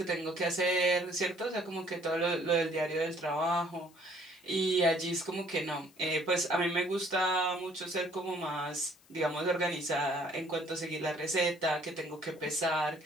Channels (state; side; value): noise; left; hiss, 28 dB below the sound